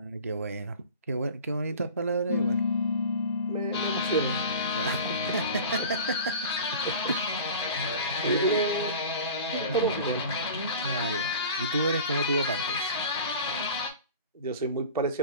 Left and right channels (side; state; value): both; inverted; correlation -0.38